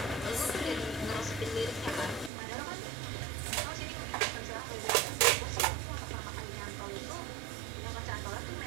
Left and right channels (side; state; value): left; drops out; at 2.3 s